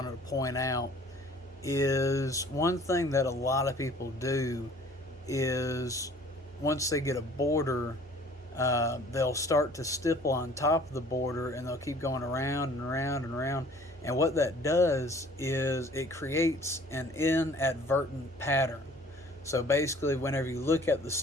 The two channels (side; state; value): both; normal; correlation 0.52